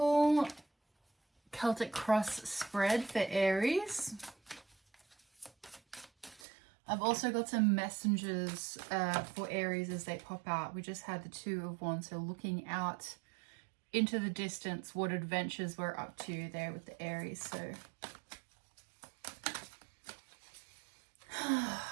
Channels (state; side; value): drops out; left; at 6.5 s